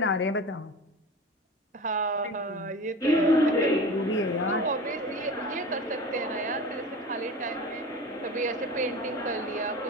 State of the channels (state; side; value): normal; both; correlation 0.33